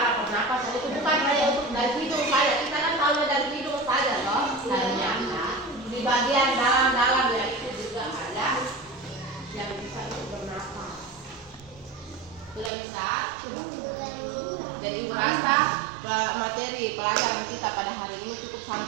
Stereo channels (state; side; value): drops out; left; at 12.7 s